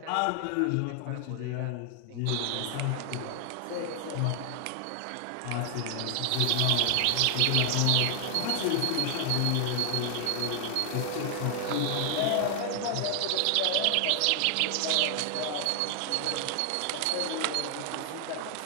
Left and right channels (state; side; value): different; both; correlation 0.00